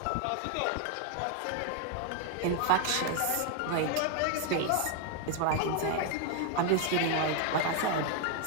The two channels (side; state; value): both; different; correlation 0.00